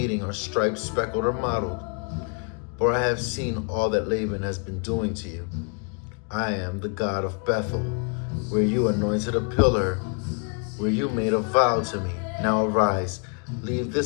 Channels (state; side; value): quieter; right; 38.3 dB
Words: are striped, speckled, or mottled. For I have seen all that Laban has been doing to you. I am the God of Bethel, where you anointed a pillar, where you made a vow to me. Now arise, leave